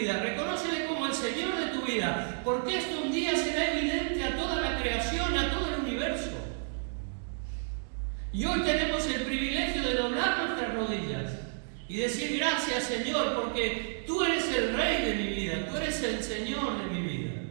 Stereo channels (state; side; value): silent; left; digital silence